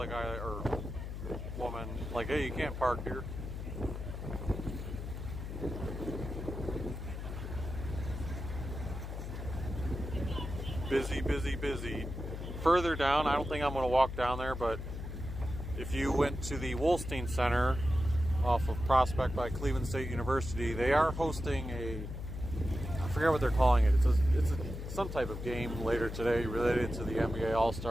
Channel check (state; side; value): noise; left; hum, 7 dB below the sound